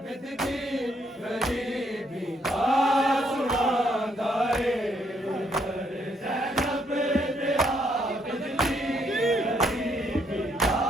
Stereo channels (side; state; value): both; normal; correlation 0.72